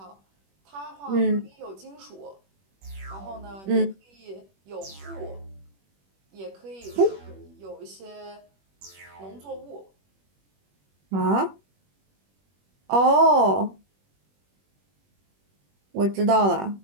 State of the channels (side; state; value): left; late; 21 ms